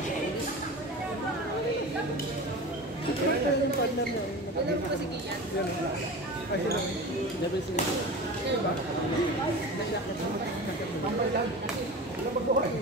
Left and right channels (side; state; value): both; normal; correlation 0.32